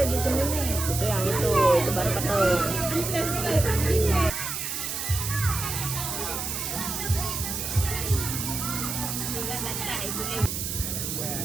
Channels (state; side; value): noise; right; hiss, 3 dB below the sound